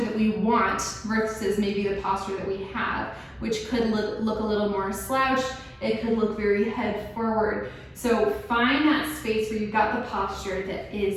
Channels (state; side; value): identical; both; correlation 1.00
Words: that we want versus maybe the posture that we have, which could look a little more slouched. It could look very head forward. So find that space where you've got the posture that